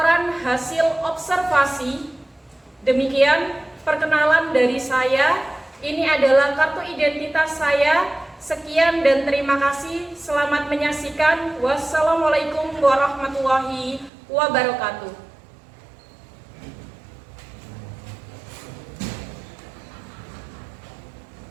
hasil observasi. Demikian perkenalan dari saya. Ini adalah kartu identitas saya. Sekian dan terima kasih. Selamat menyaksikan. Wassalamualaikum warahmatullahi wabarakatuh.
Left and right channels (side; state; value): left; drops out; at 14.1 s